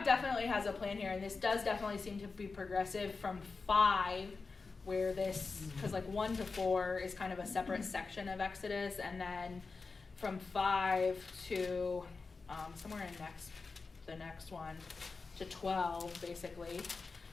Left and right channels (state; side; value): quieter; right; 4.3 dB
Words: definitely has a plan here, and this does definitely seem to be progressive from 5, where this, because 1 to 4 is kind of a separate section of Exodus, and then from 5 to somewhere in the next one to 12, basically,